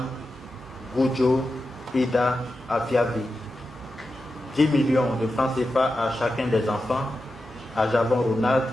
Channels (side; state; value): both; normal; correlation 0.90